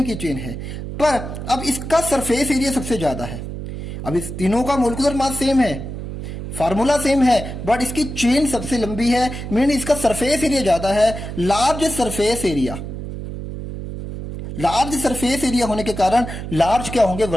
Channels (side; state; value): right; noise; hum, 8 dB below the sound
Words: की चेन है। पर अब इसका सरफेस एरिया सबसे ज्यादा है। अब इस तीनों का मोलिकुलर मास सेम है, फार्मूला सेम है, बट इसकी चेन सबसे लंबी है, मीन इसका सरफेस एरिया ज्यादा है। Large surface area, large surface area होने के कारण लार्ज क्या होंगे,